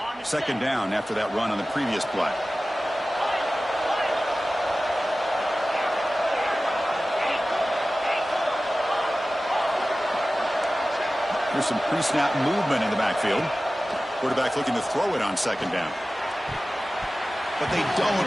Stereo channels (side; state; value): both; normal; correlation 0.96